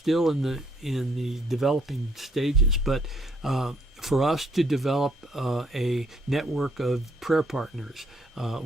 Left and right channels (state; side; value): normal; both; correlation 0.68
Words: in the developing stages, but for us to develop a network of prayer partners